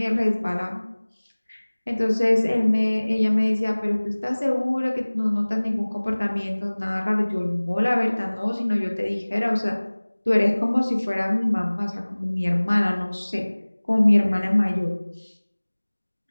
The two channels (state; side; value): inverted; both; correlation -1.00